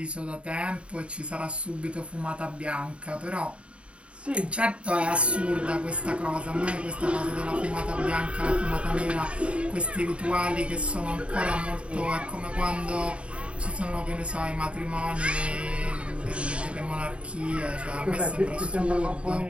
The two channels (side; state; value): left; late; 0.060 ms